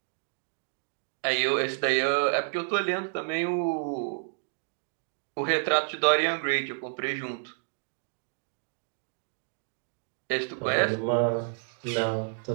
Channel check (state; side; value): silent; left; digital silence